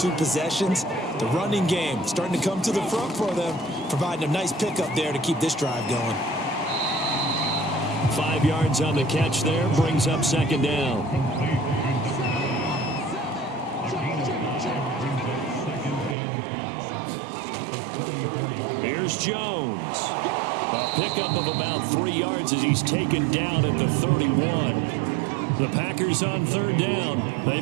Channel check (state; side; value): drops out; left; at 16.2 s